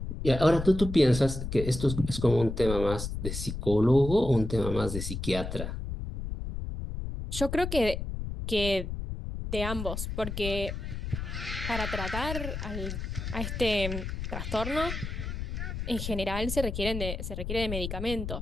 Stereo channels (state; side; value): noise; left; rumble, 5 dB below the sound